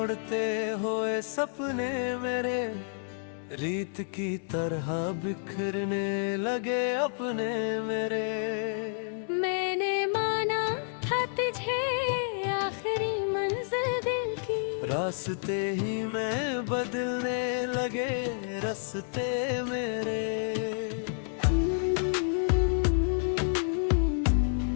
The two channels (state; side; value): silent; right; digital silence